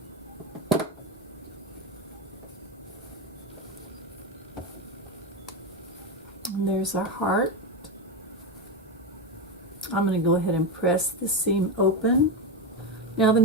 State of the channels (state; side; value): normal; both; correlation 0.13